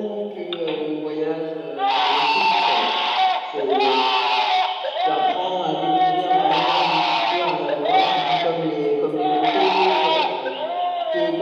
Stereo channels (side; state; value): both; identical; correlation 1.00